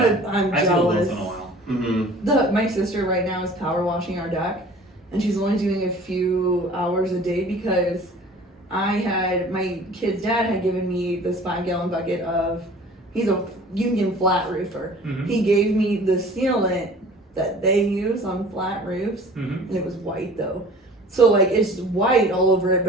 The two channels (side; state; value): both; normal; correlation 0.46